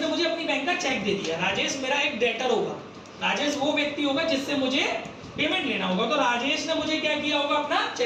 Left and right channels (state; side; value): identical; both; correlation 1.00